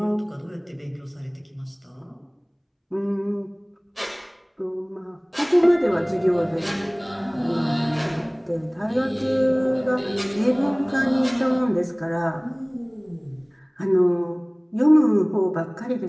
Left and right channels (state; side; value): identical; both; correlation 1.00